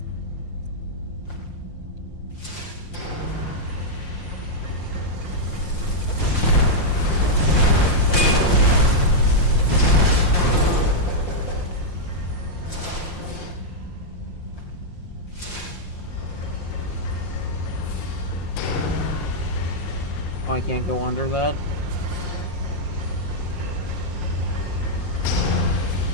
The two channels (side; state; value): right; late; 5.7 ms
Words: Oh, I can't go under that. It